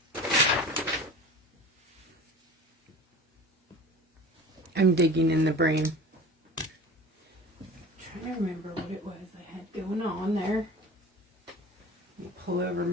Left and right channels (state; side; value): normal; both; correlation 0.38